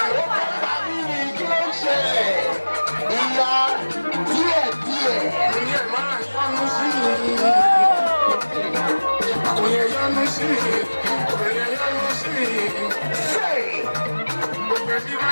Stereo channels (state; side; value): inverted; both; correlation -1.00